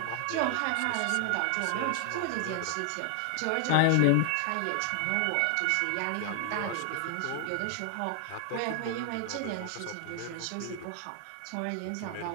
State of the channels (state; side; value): different; both; correlation 0.00